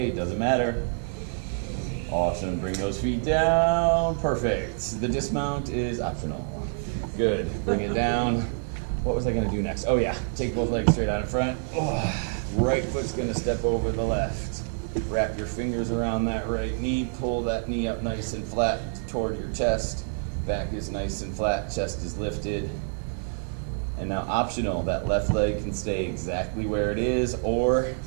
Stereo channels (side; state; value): left; silent; digital silence